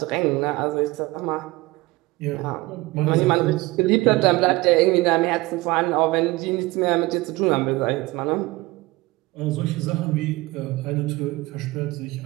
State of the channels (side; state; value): left; quieter; 21.2 dB